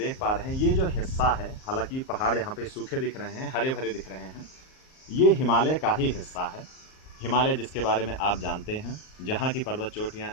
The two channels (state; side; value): late; right; 38 ms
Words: पा रहे हैं, ये जो हिस्सा है, हालांकि पहाड़ यहाँ पे सूखे दिख रहे हैं, हरे भरे दिख रहे हैं, ये हिमालय का ही हिस्सा है। हिमालय जिसके बारे में आप जानते हैं, जहाँ की पर्वत चोटियाँ